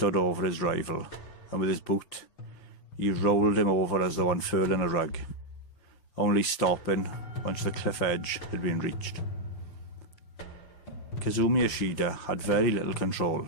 over his rival, and with his boot, he rolled him over as though unfurling a rug, only stopping once the cliff edge had been reached. Kazumi Ishida had very little control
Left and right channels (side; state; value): right; late; 5.8 ms